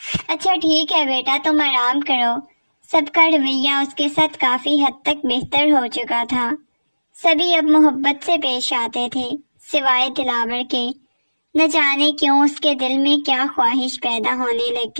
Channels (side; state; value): both; inverted; correlation -1.00